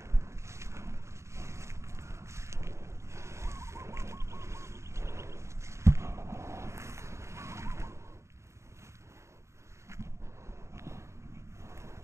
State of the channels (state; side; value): late; left; 0.14 ms